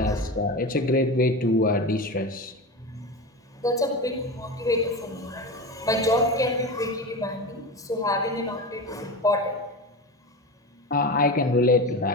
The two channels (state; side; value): normal; both; correlation 0.25